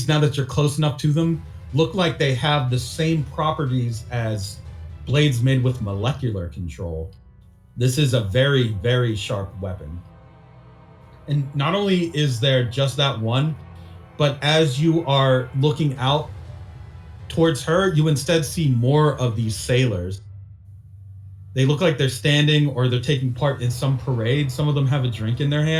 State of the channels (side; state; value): both; identical; correlation 1.00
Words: now that you're close enough to them, look like they have the same properties as blades made with molecular control. This is a very, very sharp weapon. And not only is there just that one, but as you are looking out towards her, you instead see more of these sailors. They look like they're standing or they're taking part in some parade. Some of them have a drink in their